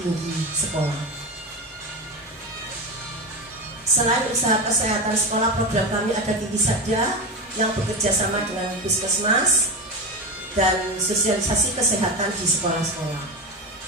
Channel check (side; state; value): both; normal; correlation 0.20